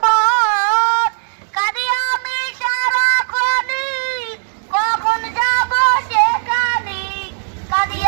কাঁদি আমি সারাক্ষণই, কখন যাব সেখানে? কাঁদি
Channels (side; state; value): left; silent; digital silence